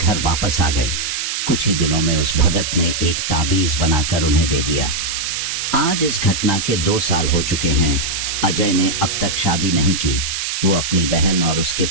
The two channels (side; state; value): right; noise; hiss, 2 dB below the sound